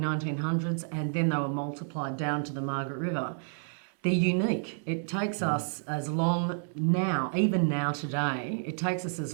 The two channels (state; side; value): silent; left; digital silence